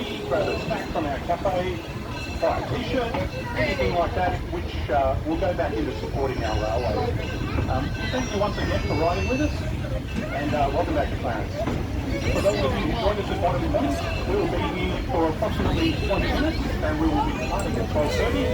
grab a snack from our cafe, buy a t-shirt, anything like that, which will go back into supporting our railway. Thank you once again for riding with us, and welcome back to Clarence. For those of you who joined us at Bottom Point, we will be here for approximately 20 minutes, and we will be departing at 12:30.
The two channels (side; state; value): both; identical; correlation 1.00